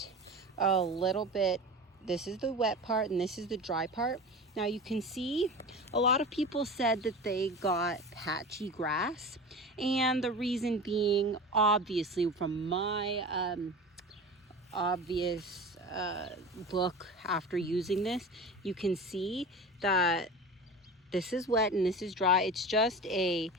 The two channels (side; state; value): both; normal; correlation 0.32